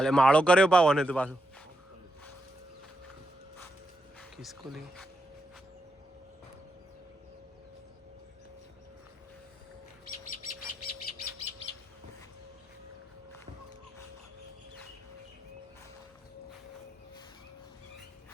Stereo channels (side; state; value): both; normal; correlation 0.84